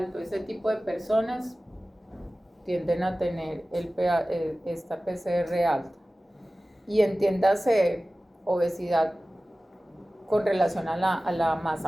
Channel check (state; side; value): normal; both; correlation 0.97